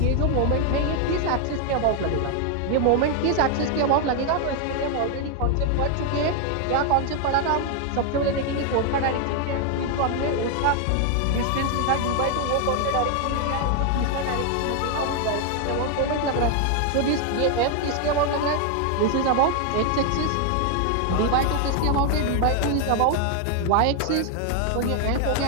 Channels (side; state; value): both; different; correlation 0.00